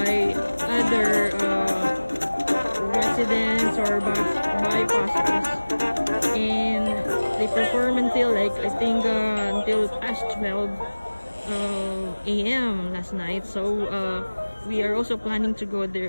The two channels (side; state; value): both; inverted; correlation -1.00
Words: other residents or bypassers, and they perform until until past 12 a.m. last night. So we are also planning to